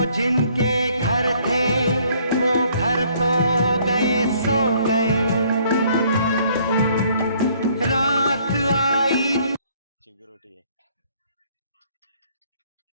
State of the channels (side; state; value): both; inverted; correlation -0.63